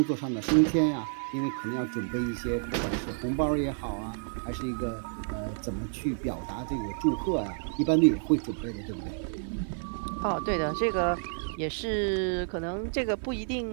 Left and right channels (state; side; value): silent; left; digital silence